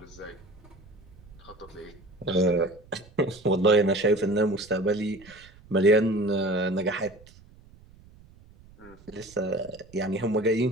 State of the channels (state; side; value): noise; right; rumble, 24 dB below the sound